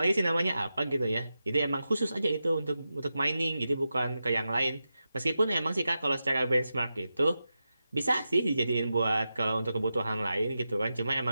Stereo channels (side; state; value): both; inverted; correlation -0.91